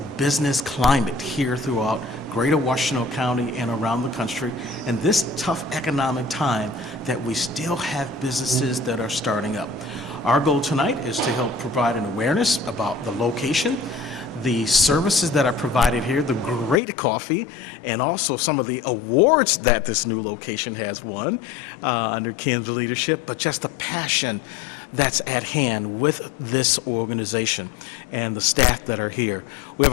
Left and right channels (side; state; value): right; drops out; at 16.8 s